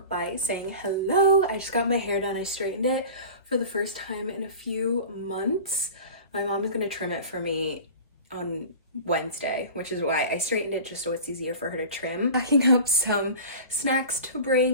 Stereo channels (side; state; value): both; inverted; correlation -0.36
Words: by saying hello. I just got my hair done. I straightened it for the first time in a few months. My mom is gonna trim it for me on Wednesday, which is why I straightened it just so it's easier for her to trim. Packing up some snacks to